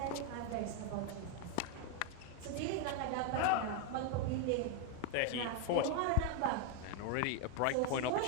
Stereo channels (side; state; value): both; different; correlation 0.01